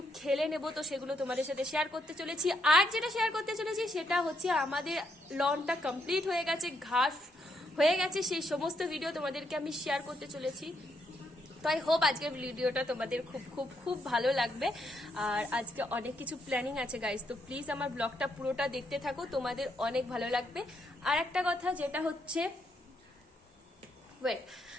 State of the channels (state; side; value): normal; both; correlation 0.76